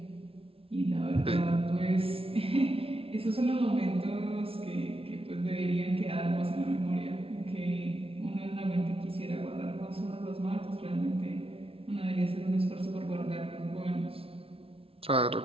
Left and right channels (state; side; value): late; left; 0.27 ms